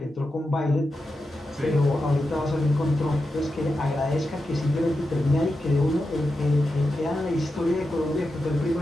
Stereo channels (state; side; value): normal; both; correlation 0.89